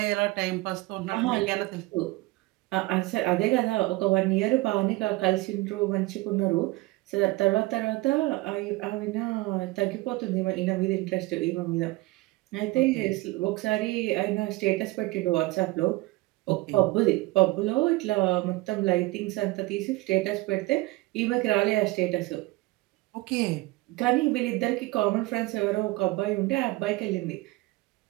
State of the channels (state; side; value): quieter; left; 20.7 dB